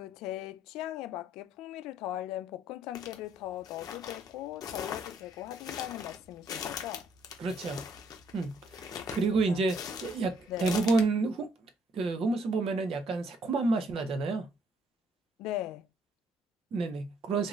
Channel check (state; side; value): normal; both; correlation 0.67